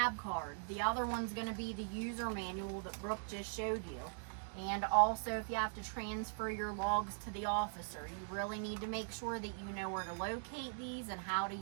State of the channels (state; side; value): silent; left; digital silence